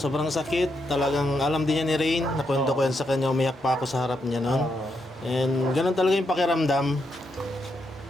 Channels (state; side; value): normal; both; correlation 0.81